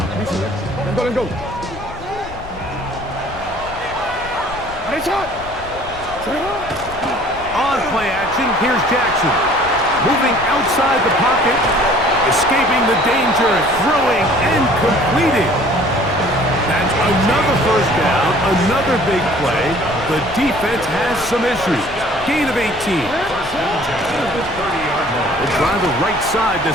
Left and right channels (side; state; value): left; noise; rumble, 16 dB below the sound